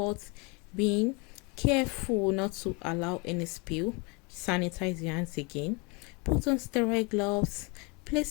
being careful not to allow any spill. Sanitize your hands again. Put on sterile gloves. Place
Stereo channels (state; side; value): quieter; right; 30.6 dB